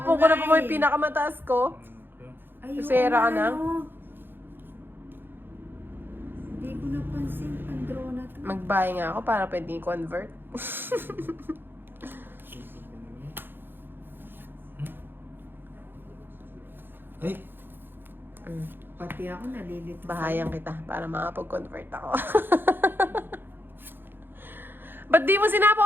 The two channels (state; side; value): late; left; 0.10 ms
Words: ko na pa mo yung pinakamataas ko. Ayun, Susera ka na? Hindi ko napansin ang draw na to. Mag-buy nga ako para pwede i-convert. Ay! Pati ako nalilito. Bahayan kita para makapag-convert ako. Ba't di mo